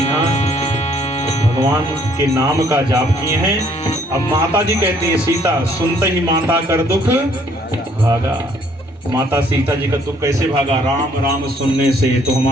भगवान के नाम का जाप किए हैं। अब माता जी कहती है सीता सुनते ही माता कर दुख भागा। माता सीता जी का दुख कैसे भागा? राम राम सुनने से तो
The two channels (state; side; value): normal; both; correlation 0.63